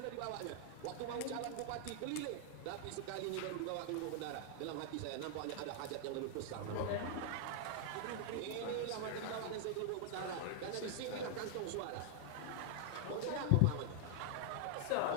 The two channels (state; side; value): different; both; correlation 0.00